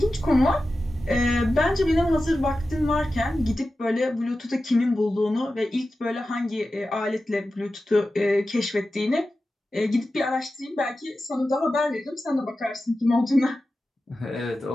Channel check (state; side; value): normal; both; correlation 0.93